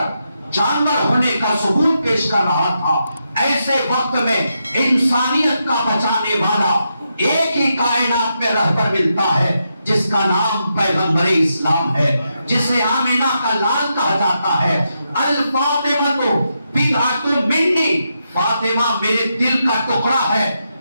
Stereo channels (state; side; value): inverted; both; correlation -0.84